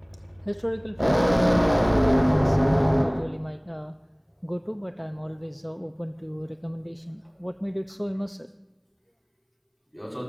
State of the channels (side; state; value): both; identical; correlation 1.00